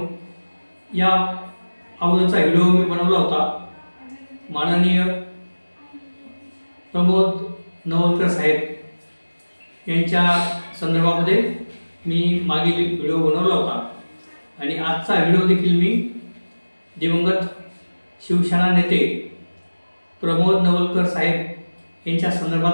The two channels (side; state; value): both; inverted; correlation -1.00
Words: या अगोदरचा व्हिडिओ मी बनवला होता. माननीय प्रमोद नवलकर साहेब यांच्या संदर्भामध्ये मी मागील व्हिडिओ बनवला होता आणि आजचा व्हिडिओ देखील मी दिवंगत शिवसेना नेते प्रमोद नवलकर साहेब यांच्या